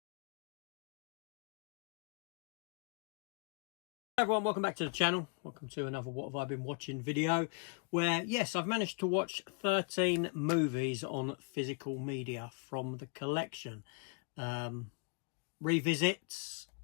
Hi everyone, welcome back to the channel. Welcome to another What Have I Been Watching video where, yes, I've managed to watch 13 movies on physical media from the collection. Revisits,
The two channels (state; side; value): quieter; right; 36.1 dB